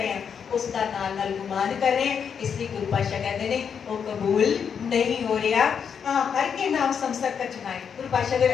हैं उसका नाल नाल गुमान कर रहे हैं, इसलिए गुरु पातशाह कहते हैं वो कबूल नहीं हो रहा। हर के नाम समसर का चुनाए, गुरु पातशाह अगर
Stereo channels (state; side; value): quieter; right; 7.1 dB